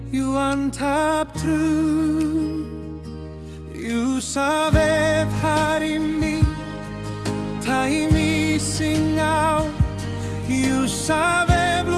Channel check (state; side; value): identical; both; correlation 1.00